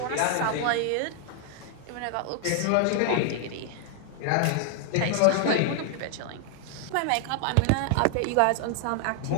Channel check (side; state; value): both; different; correlation 0.00